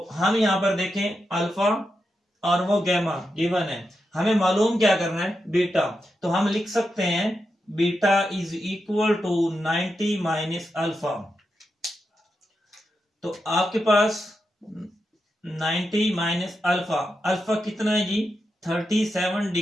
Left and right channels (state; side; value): normal; both; correlation 0.87